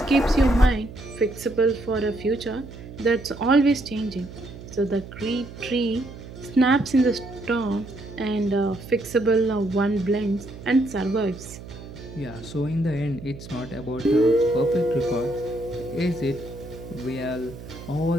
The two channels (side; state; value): right; noise; hum, 14 dB below the sound